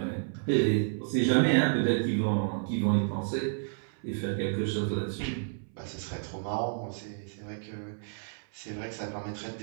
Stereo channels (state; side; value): silent; left; 57 dB below the other